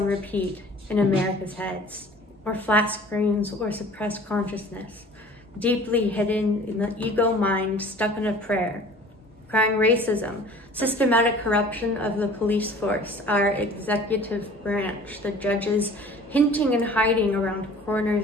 repeat in America's heads, or flat screens, or suppressed consciousness, deeply hidden in the ego mind stuck in a prayer, crying racism, systematic corruption of the police force, our executive branch, the judges hinting and hiding around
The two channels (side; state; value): both; normal; correlation 0.47